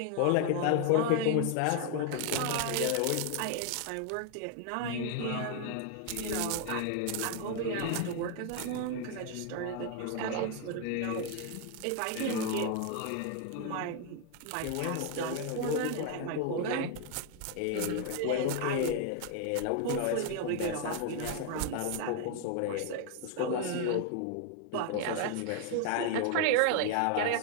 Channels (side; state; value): both; different; correlation 0.00